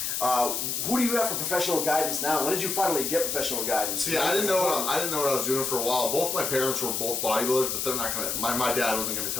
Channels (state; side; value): noise; left; hiss, 1 dB below the sound